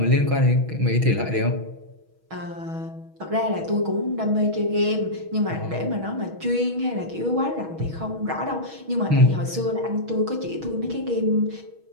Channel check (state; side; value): late; left; 6.3 ms